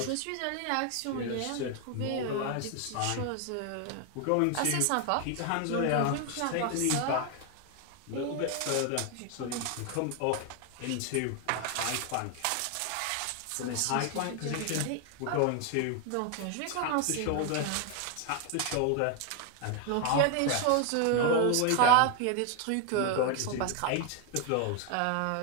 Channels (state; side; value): different; both; correlation 0.01